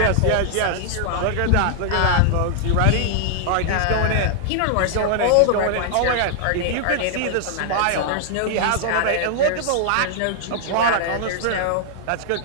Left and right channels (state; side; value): different; both; correlation -0.01